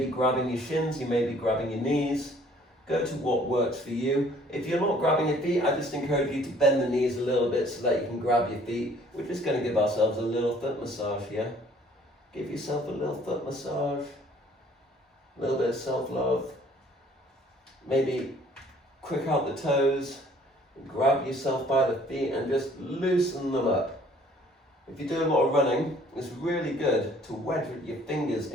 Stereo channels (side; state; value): both; normal; correlation 0.57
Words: grabbing your shins, you may be grabbing your knees. Go to what works for you. If you're not grabbing your feet, I just encourage you to bend the knees a little bit so that you can grab your feet. We're just going to give ourselves a little foot massage here. Give yourself a little foot massage. A little bit of self-love. Maybe quick out the toes. Grab yourself by the feet and just loosen them up. If you do a lot of running, it's really good to wedge your fingers